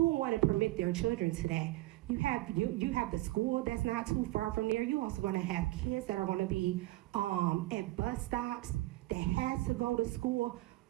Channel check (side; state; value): left; quieter; 18.6 dB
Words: would want to permit their children to that? You have the school that's not too far from there. You're also going to have kids that are going to be at bus stops that has to go to school.